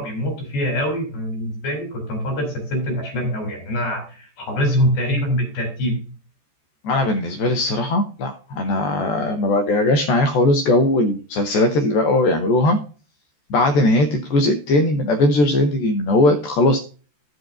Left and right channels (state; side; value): late; right; 14 ms